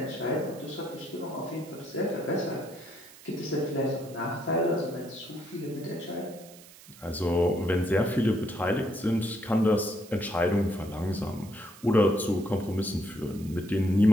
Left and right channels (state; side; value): noise; right; hiss, 20 dB below the sound